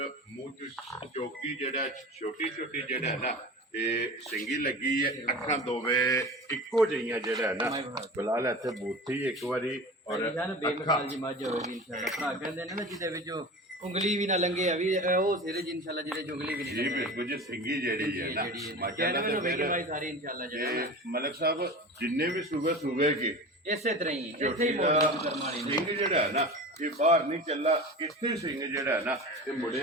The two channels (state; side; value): normal; both; correlation 0.33